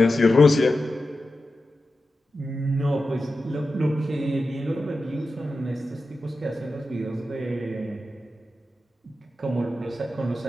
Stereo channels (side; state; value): both; normal; correlation 0.92